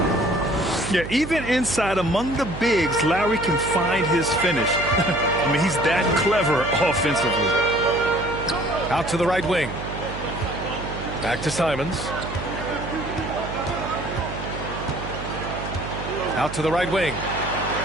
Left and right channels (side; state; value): right; noise; hum, 8 dB below the sound